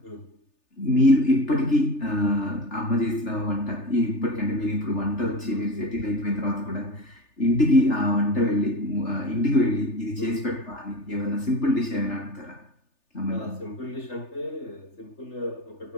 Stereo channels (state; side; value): late; right; 3.4 ms